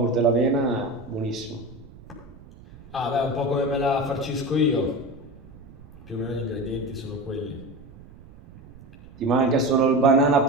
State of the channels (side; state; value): right; noise; rumble, 20 dB below the sound